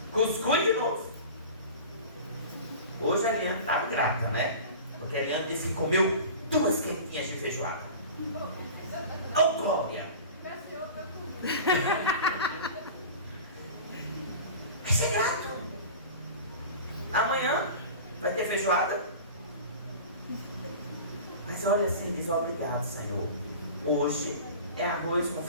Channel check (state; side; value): inverted; both; correlation -0.36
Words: Cuscuz de novo. Hoje a Eliane está grata, né? Porque a Eliane disse que comeu 2 quentinhas de feijoada. Oh, glória! Vai ser grato. Amanhã vai ter feijoada. Mas olha assim, diz obrigado, Senhor. Hoje é arroz com